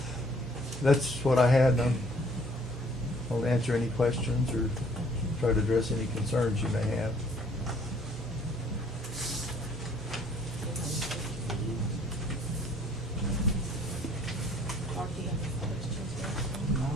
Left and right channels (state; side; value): normal; both; correlation 0.59